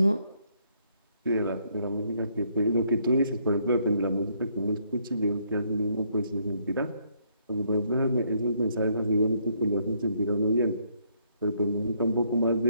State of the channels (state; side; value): inverted; both; correlation -0.70